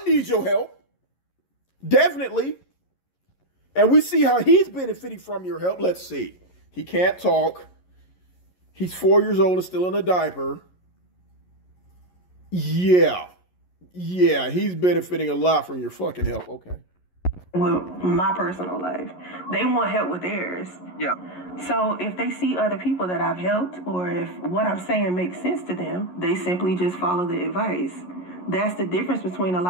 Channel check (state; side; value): late; right; 11 ms